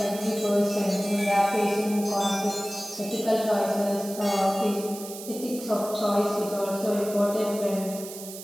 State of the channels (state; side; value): noise; right; hiss, 12 dB below the sound